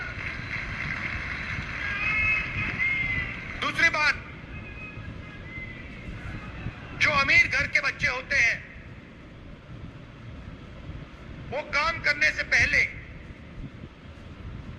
दूसरी बात, जो अमीर घर के बच्चे होते हैं वो काम करने से पहले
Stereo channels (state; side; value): identical; both; correlation 1.00